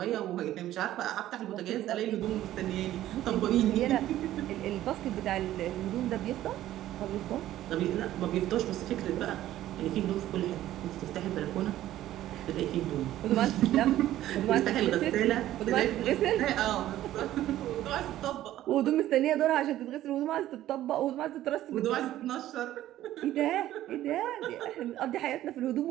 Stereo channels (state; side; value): quieter; left; 13.7 dB